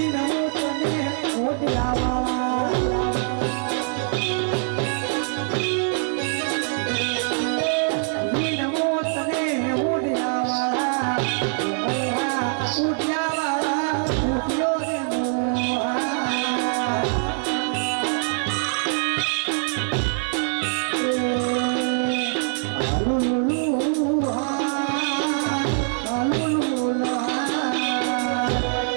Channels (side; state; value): left; silent; 55 dB below the other